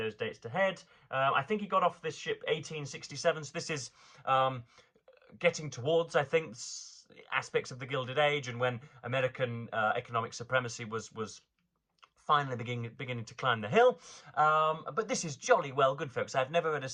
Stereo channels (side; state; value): both; identical; correlation 1.00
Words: dates to head. I think he got off this ship 1867, so this is getting towards, I think, aspects of the Gilded Age, and when American economic supremacy was finally beginning to climb the hill. But this is jolly well good, folks. I've never read a